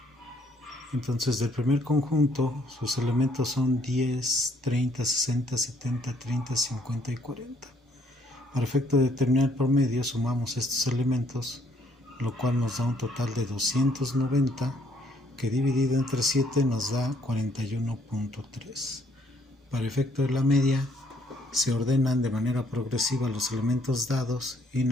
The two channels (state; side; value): normal; both; correlation 0.66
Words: Entonces, del primer conjunto, sus elementos son 10, 30, 60, 70, 30, 50 y 40. Para efecto de determinar el promedio, sumamos estos elementos, lo cual nos da un total de 290, que dividido entre 7 nos da 41.3. Para efecto de la media, se ordenan de manera progresiva los elementos dados y